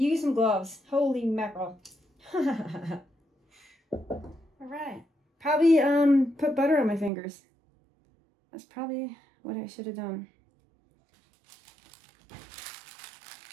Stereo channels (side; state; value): left; drops out; at 7.1 s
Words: some gloves. Holy mackerel. All right. Probably put butter on my fingers. That's probably what I should have done.